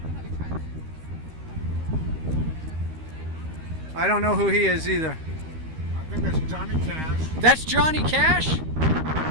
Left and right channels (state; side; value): late; left; 13 ms